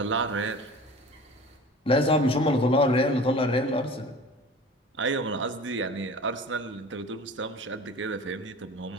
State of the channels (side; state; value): both; normal; correlation 0.40